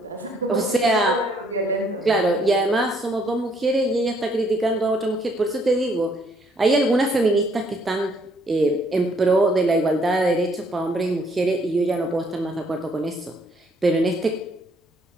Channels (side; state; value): both; normal; correlation 0.67